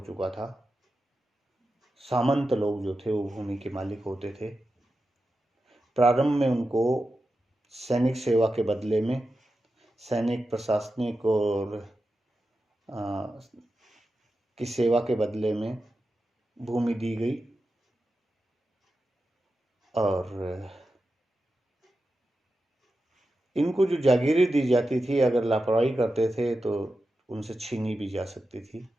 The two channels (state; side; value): normal; both; correlation 0.91